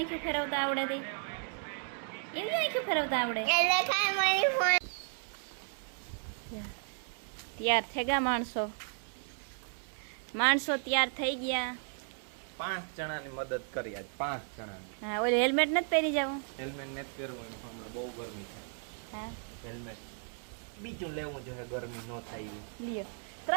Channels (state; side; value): silent; left; 55 dB below the other